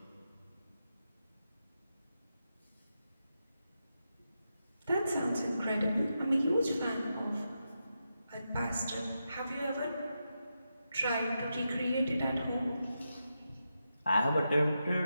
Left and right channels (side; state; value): both; inverted; correlation -0.87